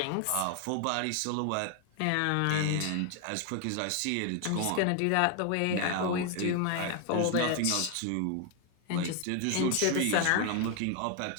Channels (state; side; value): different; both; correlation 0.00